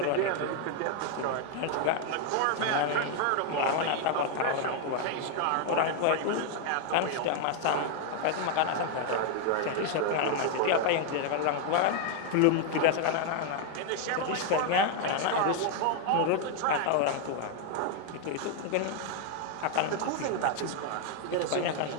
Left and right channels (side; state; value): both; different; correlation 0.00